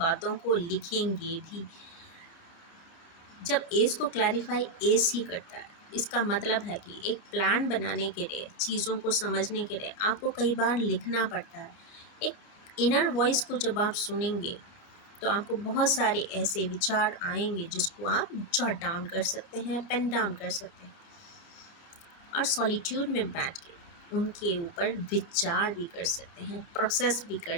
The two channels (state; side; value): late; right; 29 ms